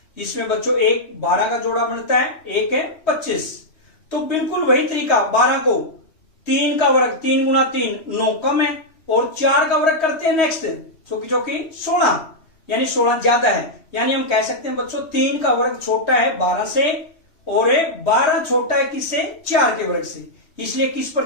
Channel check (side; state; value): right; late; 3.2 ms